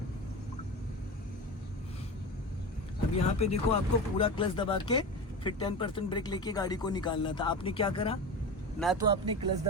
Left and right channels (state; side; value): normal; both; correlation 0.26